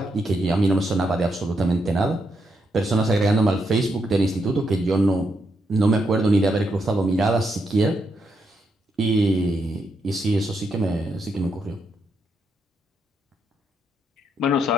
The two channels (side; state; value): both; normal; correlation 0.80